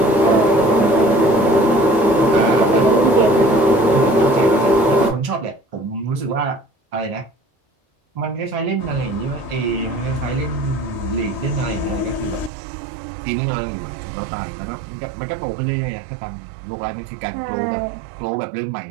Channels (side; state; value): left; drops out; at 12.5 s